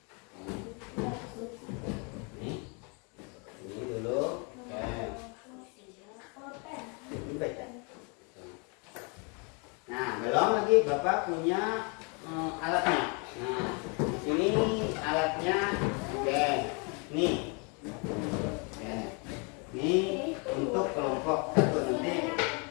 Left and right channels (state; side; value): quieter; right; 33.9 dB